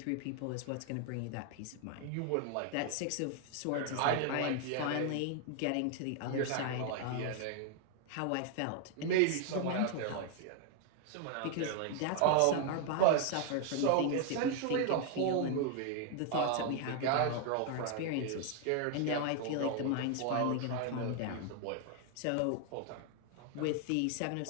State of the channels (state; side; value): different; both; correlation 0.00